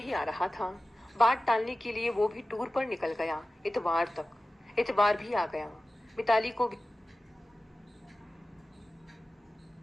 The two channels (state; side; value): normal; both; correlation 0.96